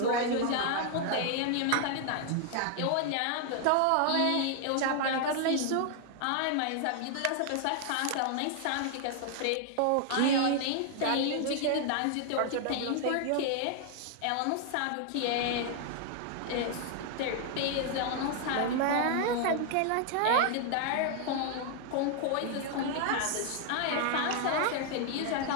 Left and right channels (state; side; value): different; both; correlation 0.00